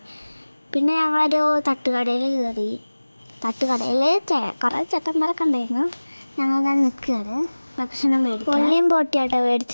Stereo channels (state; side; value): inverted; both; correlation -1.00